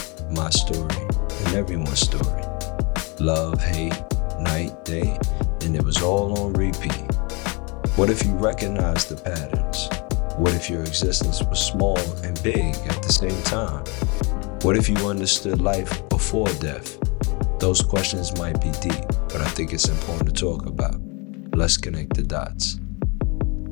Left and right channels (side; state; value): right; quieter; 29.7 dB